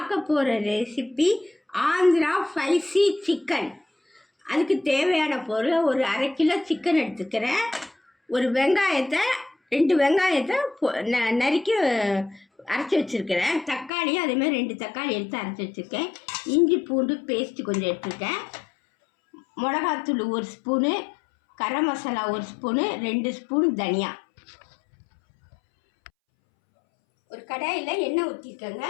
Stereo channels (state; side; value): drops out; right; at 13.9 s